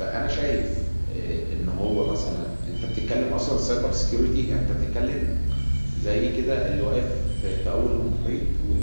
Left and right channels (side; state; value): both; inverted; correlation -1.00